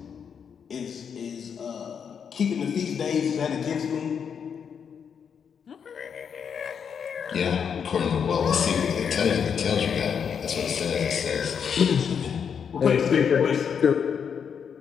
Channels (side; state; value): right; quieter; 7.1 dB